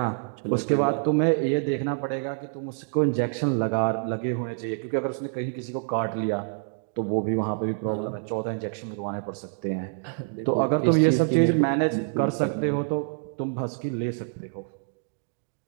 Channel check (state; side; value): silent; left; digital silence